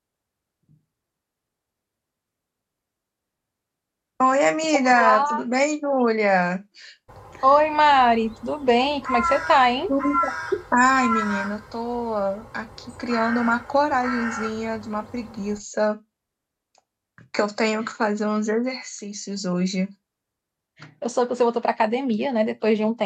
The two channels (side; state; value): both; identical; correlation 1.00